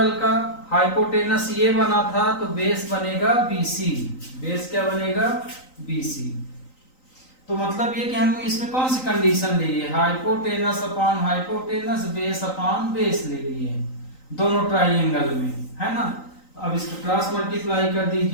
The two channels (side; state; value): right; late; 3.9 ms